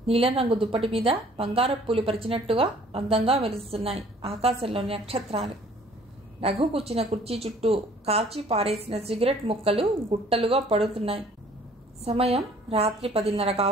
నీలం రంగు దుప్పటి మీద బంగారపు పూలు పరిచినట్టుగా అందంగా వెలుస్తున్నాయి ఆకాశంలోని నక్షత్రాలు. రఘు కూర్చున్న కుర్చీ చుట్టూ కాల్చి పారేసిన సిగరెట్ ముక్కలు గుట్టలుగా పడుతున్నాయి. సమయం రాత్రి 10:30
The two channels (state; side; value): normal; both; correlation 0.55